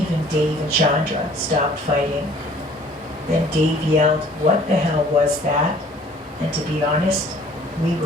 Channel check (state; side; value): normal; both; correlation 0.54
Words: Dave and Chandra stopped fighting. Then Dave yelled, "What the hell was that?" And to be honest, we